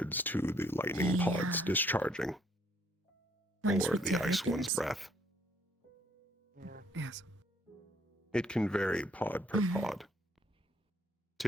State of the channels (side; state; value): both; normal; correlation 0.66